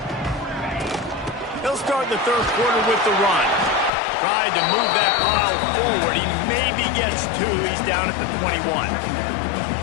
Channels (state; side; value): drops out; right; at 3.9 s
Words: He'll start the third quarter with the run. Tried to move that pile forward. He maybe gets 2. He's down at the 21.